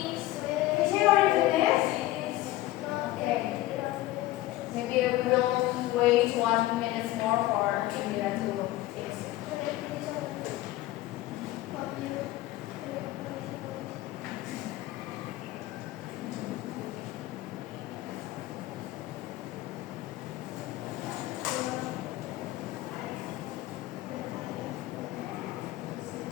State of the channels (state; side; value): quieter; right; 16.3 dB